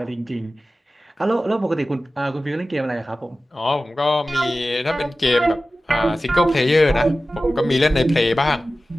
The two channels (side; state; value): both; normal; correlation 0.95